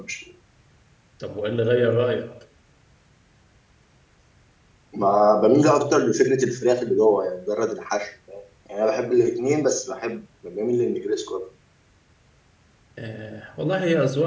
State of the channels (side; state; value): both; identical; correlation 1.00